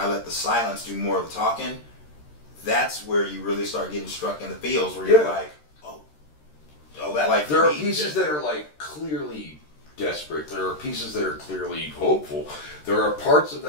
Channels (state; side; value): late; right; 13 ms